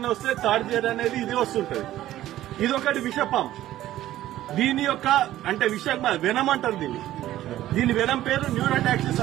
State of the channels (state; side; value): quieter; left; 14.0 dB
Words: వస్తే తాడిజేరు అనేది ఇది వస్తుంటది. ఇదొకటి విషపాము. దీని యొక్క అంటే వెనం అంటారు దీని వెనం పేరు న్యూరోటాక్సిస్